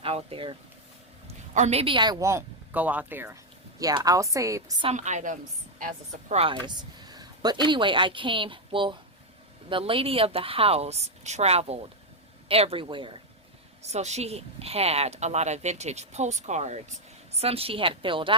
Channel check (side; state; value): both; normal; correlation 0.01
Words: out there. Or maybe I won't go out there. Yeah, I'll save some items as a surprise. But anyway, well, the lady of the house traveled everywhere. So she had a lot of vintage postcards. Some she had filled